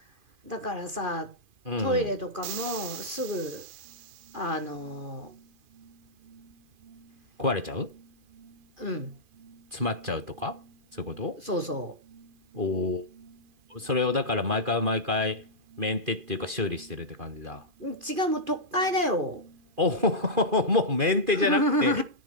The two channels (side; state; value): left; late; 2.5 ms